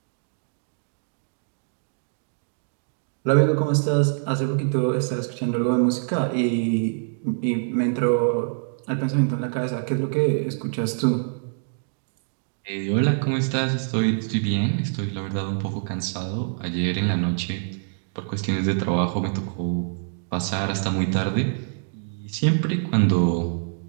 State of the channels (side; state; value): left; silent; digital silence